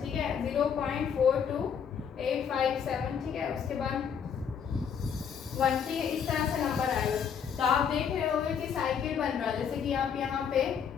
ठीक है, 0.42857। ठीक है, उसके बाद 1। ठीक है, इस तरह से नंबर आएगा। तो आप देख रहे होंगे कि साइकिल बन रहा है, जैसे कि आप यहाँ पे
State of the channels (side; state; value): right; quieter; 7.4 dB